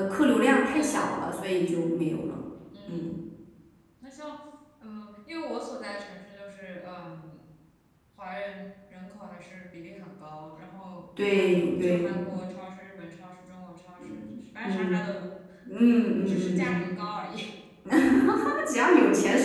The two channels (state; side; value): identical; both; correlation 1.00